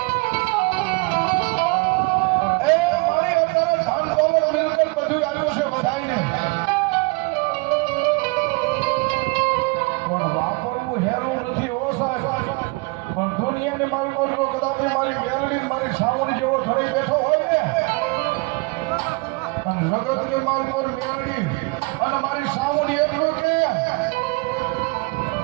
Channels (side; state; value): left; quieter; 28.2 dB